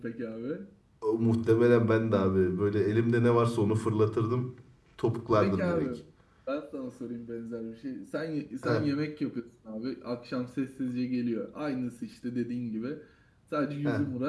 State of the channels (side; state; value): both; identical; correlation 1.00